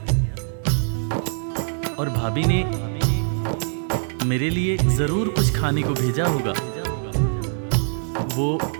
और भाभी ने मेरे लिए जरूर कुछ खाने को भेजा होगा। वो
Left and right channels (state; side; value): silent; left; digital silence